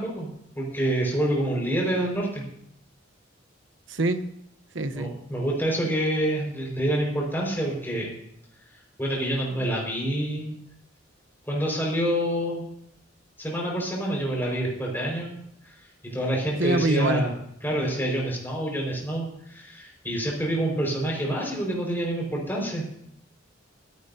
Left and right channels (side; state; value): both; normal; correlation 0.58